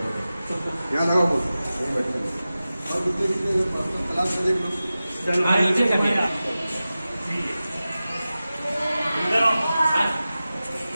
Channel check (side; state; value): both; inverted; correlation -0.95